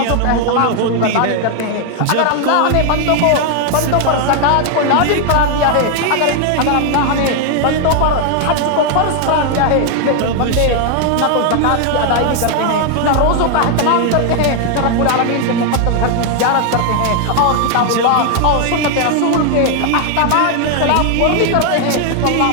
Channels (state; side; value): different; both; correlation 0.00